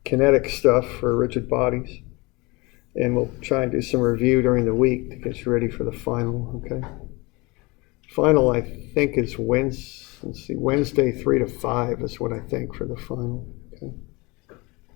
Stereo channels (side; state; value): right; quieter; 25.1 dB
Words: kinetic stuff for rigid bodies, and we'll try and do some review during the week to get you ready for the final, okay? Final, I think, is Wednesday 3 to 5 is what I think for the final, okay?